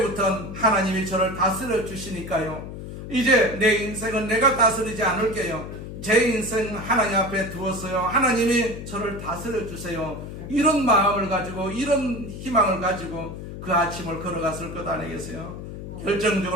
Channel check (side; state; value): left; noise; hum, 10 dB below the sound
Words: 하나님이 저를 다스려 주시니까요. 이제 내 인생은 내가 다스리지 않을게요. 제 인생 하나님 앞에 두었어요. 하나님이 저를 다스려 주세요. 이런 마음을 가지고, 이런 희망을 가지고 그 아침을 걸어갔을 것 아니겠어요?